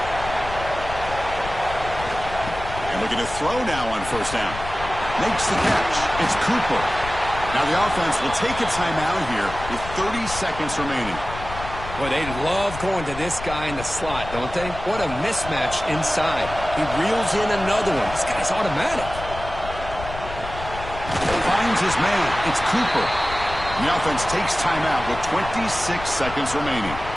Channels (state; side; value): noise; left; rumble, 11 dB below the sound